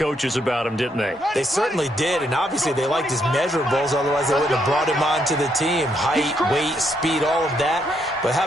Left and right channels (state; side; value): normal; both; correlation 0.75